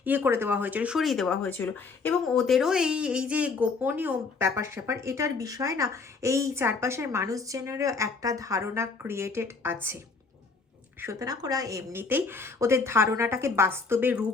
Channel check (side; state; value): right; quieter; 4.5 dB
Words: করে দেওয়া হয়েছিল, সরিয়ে দেওয়া হয়েছিল। এবং ওদেরও এই যে গোপনীয় ব্যাপার স্যাপার, এটার বিষয় না এই চারপাশের মানুষজনেরও একটা ধারণা ক্রিয়েটেড আছে। সুতরাং ওরা এমনিতেই ওদের ধারণাটাকে বাস্তবে